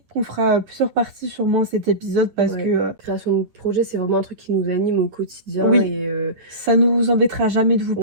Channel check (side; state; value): left; late; 9.7 ms